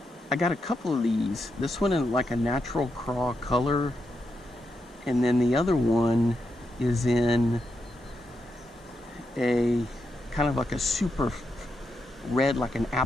got a couple of these. This one in like a natural craw color. And then the other one is in a kind of like a super red, like an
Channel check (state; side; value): normal; both; correlation 0.84